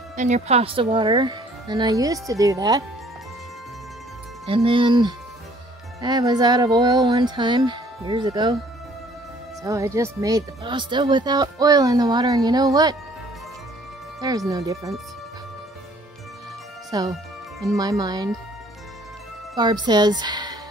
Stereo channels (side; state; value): both; normal; correlation 0.58